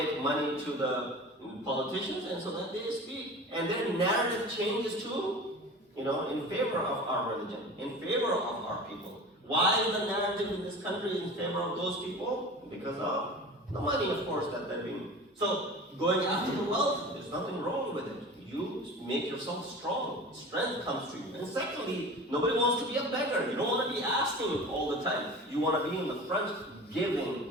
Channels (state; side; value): normal; both; correlation 0.37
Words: money to the politicians, and so that they speak, and their narrative changes too, in favor of our religion, in favor of our people. Why is the narrative in this country in favor of those people? Because of the money, of course, that they're being. So going after the wealth, there's nothing wrong with it. You make yourself strong. Strength comes to you. And secondly, nobody wants to be a beggar. You don't want to be asking all the time. You want to be in the front,